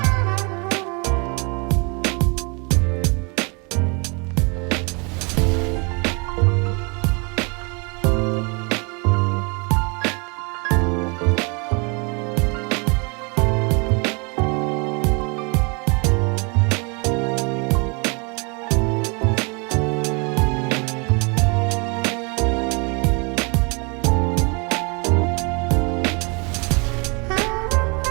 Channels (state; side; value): quieter; left; 31.7 dB